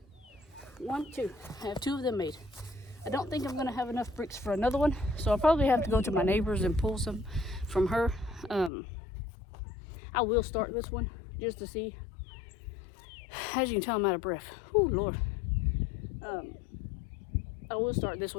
2. I have 2 of them made. I don't think I'm gonna have enough bricks for another one, so I'll probably have to go to my neighbor's and pull some from her. I will start this one just to see. As you can tell, I'm out of breath. Oh Lord. I will start this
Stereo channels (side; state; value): right; drops out; at 8.7 s